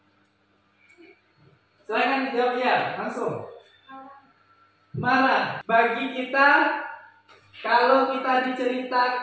Silakan dijawab ya, langsung. Marah. Bagi kita, kalau kita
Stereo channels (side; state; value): both; identical; correlation 1.00